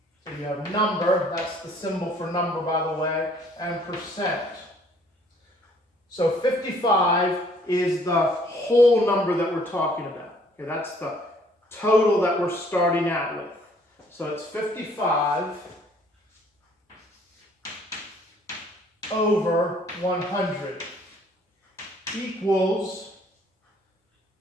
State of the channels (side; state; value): both; normal; correlation 0.60